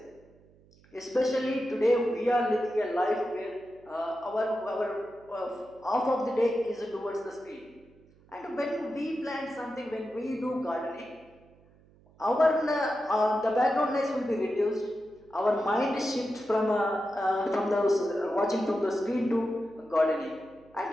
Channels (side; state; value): right; noise; hum, 28 dB below the sound